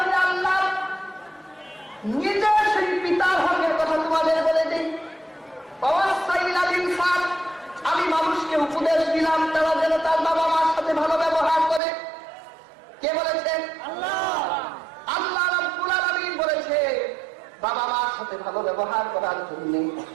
আল্লাহ নিজে সেই পিতার হকের কথা তোমাদের বলে দিই। আমি মানুষকে উপদেশ দিলাম তারা যেন তার বাবা মার সাথে ভালো ব্যবহার করে। কে বলেছেন? আল্লাহ। আল্লাহ রাব্বুল আলামিন বলেছে বাবা মার সাথে ভালো ব্যবহার করার জন্য।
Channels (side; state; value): left; drops out; at 11.8 s